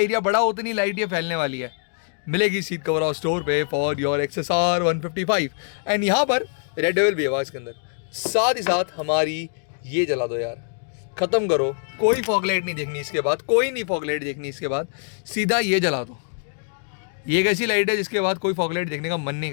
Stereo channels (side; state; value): right; silent; 63 dB below the other